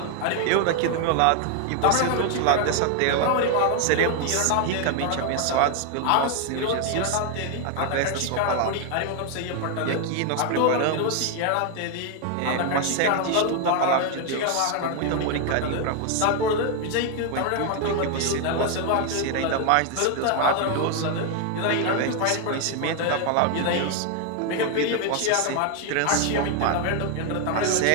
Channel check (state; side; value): different; both; correlation 0.01